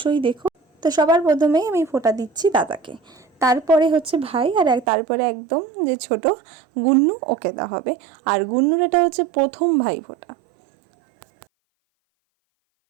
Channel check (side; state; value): left; drops out; at 4.9 s